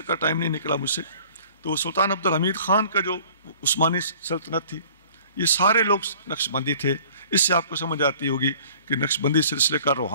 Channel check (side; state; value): both; inverted; correlation -0.51